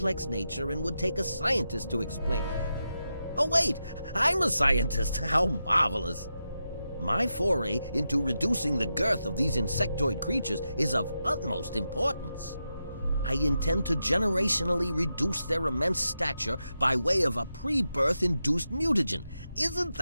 nature and would take a scientist to explain. Oh wait, I'm a scientist. How marvelous. My foray into reducing the girth of these insectoid creatures is of utmost importance. I intend to generationally reduce their immense stature by way of a pre-birth induced mutagen. Isn't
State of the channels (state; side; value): inverted; both; correlation -0.88